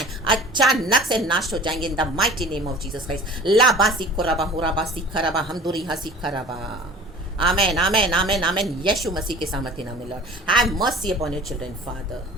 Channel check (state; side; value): normal; both; correlation 0.43